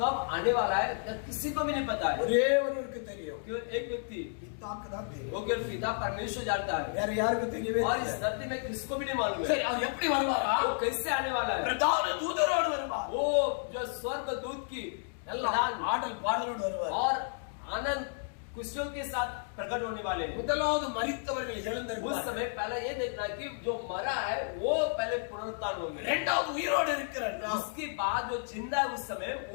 कब आने वाला है किसी को भी नहीं पता है। ஒரே ஒருவருக்கு தெரியும். केवल एक व्यक्ति பிதாக்கு தான் தெரியும். वो केवल पिता परमेश्वर जानता है। வேற யாருக்கு தெரியவே और इस தெரியாது. धरती में किसको भी नहीं मालूम है। சரி, அவர் எப்படி வருவாரா? वो कैसे आने वाला है? பிரதான தூதரோடு வருவார். वो जो स्वर्ग दूत की நல்ல ஆடல் பாடலோடு வருவார். और आनंद खुशियों के साथ प्रकट होने वाले हैं। முதலாவது மரித்தவர்கள் उस எழுந்திருப்பார். समय पहले ये देखना कि जो मरा है वो पहले पुनरुत्थान होंगे। இரண்டாவது உயிரோடு இருக்கிற நாம், उसके बाद जो जिंदा है उस समय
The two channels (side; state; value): right; silent; digital silence